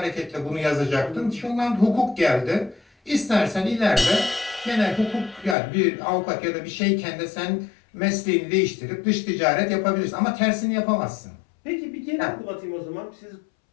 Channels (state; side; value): drops out; right; at 5.6 s